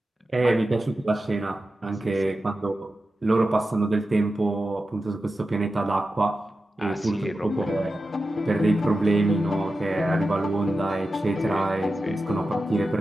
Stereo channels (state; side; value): normal; both; correlation 0.92